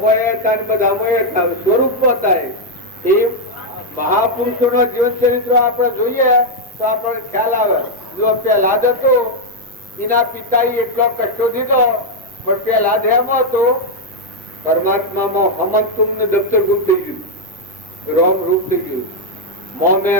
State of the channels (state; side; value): normal; both; correlation 0.00